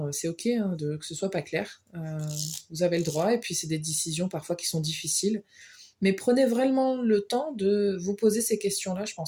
c'est ok hein, que ce soit pas clair. Vous avez le droit et puis c'est des décisions parfois qui sont difficiles. Mais prenez vraiment le temps de vous poser ces questions-là, je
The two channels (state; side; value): identical; both; correlation 1.00